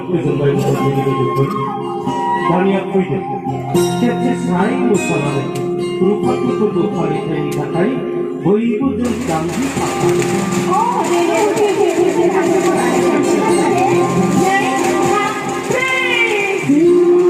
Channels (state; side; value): identical; both; correlation 1.00